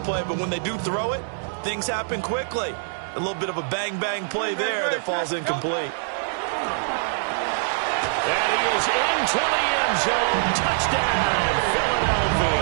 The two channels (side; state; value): left; silent; 63 dB below the other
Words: play, but when they do throw it, things happen quickly. A little bit of a bang-bang play there that falls incomplete. And he is into the end zone. Touchdown,